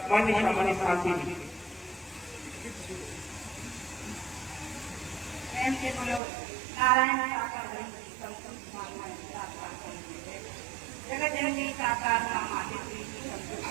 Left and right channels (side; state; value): left; drops out; at 6.2 s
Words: मन शांति शांति। नारायण जगत जननी साकार